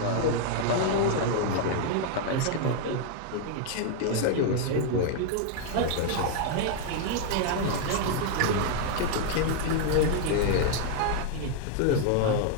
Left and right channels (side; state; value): both; different; correlation 0.00